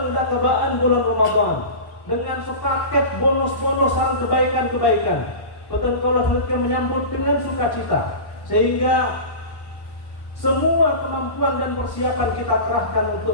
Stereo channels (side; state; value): right; late; 1.1 ms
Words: dah kebaan bulan Ramadan dengan sepaket bonus-bonus sareng kebaikan-kebaikan. Boten kaula menyambut dengan sukacita sehingga semua kemampuan dan persiapan kita kerahkan